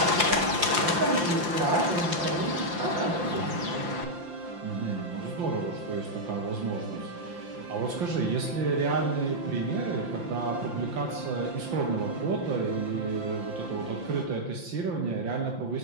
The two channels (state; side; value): late; left; 5.8 ms